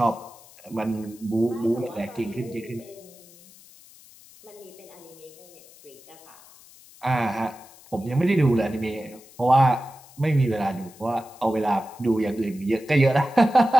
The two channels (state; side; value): noise; left; hiss, 23 dB below the sound